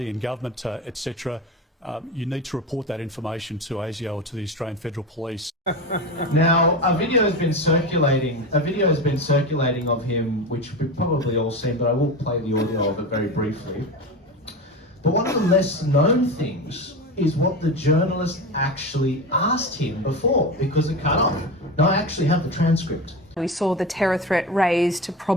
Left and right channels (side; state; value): both; normal; correlation 0.24